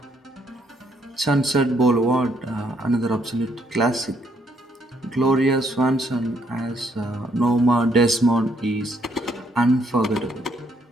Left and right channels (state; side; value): normal; both; correlation 0.71